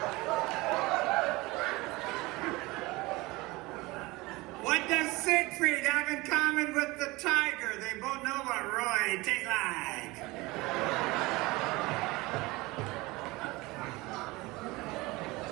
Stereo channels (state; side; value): quieter; left; 22.0 dB